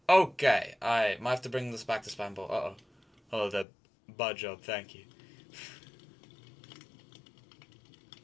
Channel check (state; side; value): drops out; right; at 3.7 s